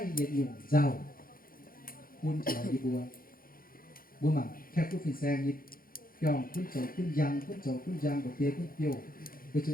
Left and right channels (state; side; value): late; right; 0.42 ms